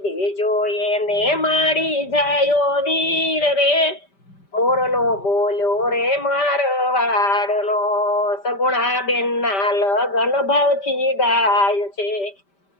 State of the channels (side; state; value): right; late; 5.1 ms